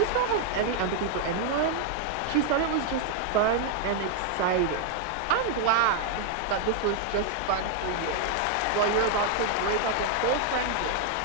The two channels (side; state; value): both; different; correlation 0.00